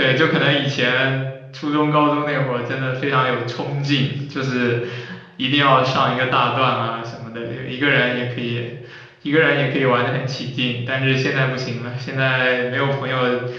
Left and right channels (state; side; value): identical; both; correlation 1.00